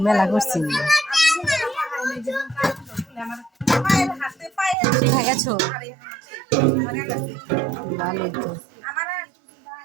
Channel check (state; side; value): drops out; left; at 4.8 s